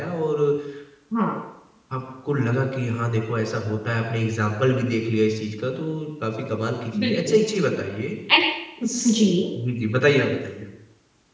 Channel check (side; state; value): both; identical; correlation 1.00